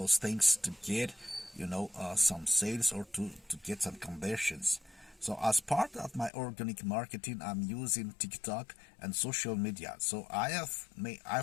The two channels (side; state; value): right; drops out; at 6.3 s